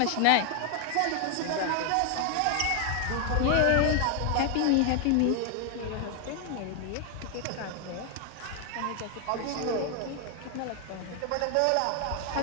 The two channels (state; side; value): different; both; correlation 0.01